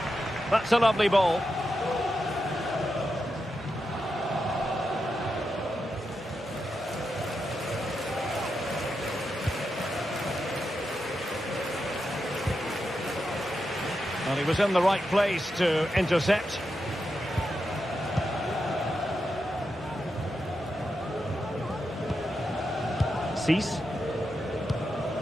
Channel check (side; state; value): both; normal; correlation 0.87